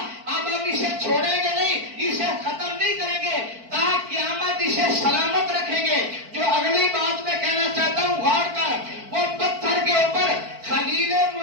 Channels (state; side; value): late; left; 4.5 ms